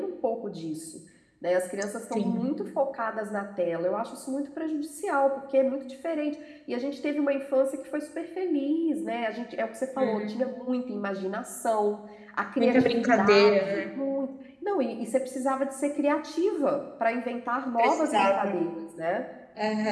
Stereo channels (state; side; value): identical; both; correlation 1.00